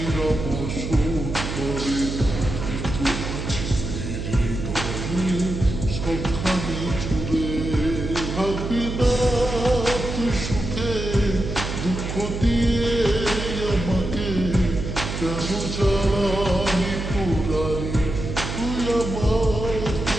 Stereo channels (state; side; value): noise; right; hum, 5 dB below the sound